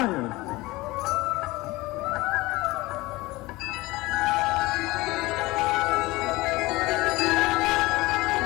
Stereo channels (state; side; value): quieter; right; 20.5 dB